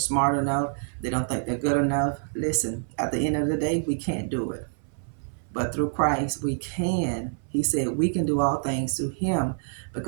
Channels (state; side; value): silent; left; 60 dB below the other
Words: enough. They don't think they're good enough. Listen, at the end of the day, we can't do it. But through Christ, we can. He said we can do all things through Him